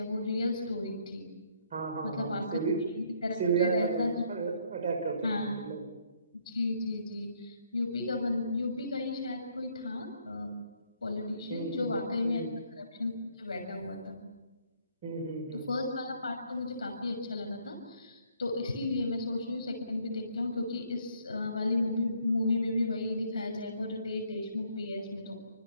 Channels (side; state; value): both; inverted; correlation -0.67